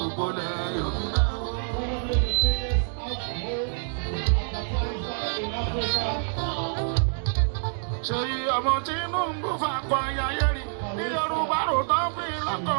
ilẹ̀ Yorùbá. Seyi ọmọ Tinubu fakọ ayáyé rí ní Yorùbá rò tán fi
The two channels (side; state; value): left; silent; digital silence